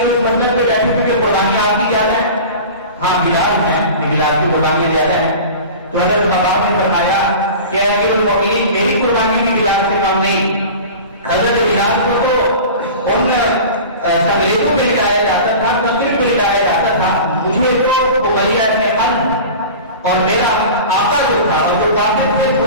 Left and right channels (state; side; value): inverted; both; correlation -0.35